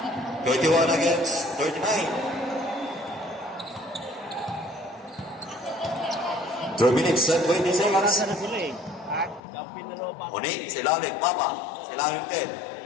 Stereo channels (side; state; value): right; drops out; at 9.4 s